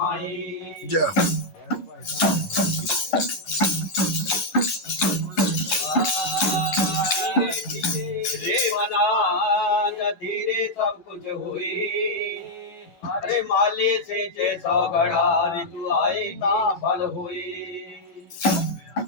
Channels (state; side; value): late; right; 12 ms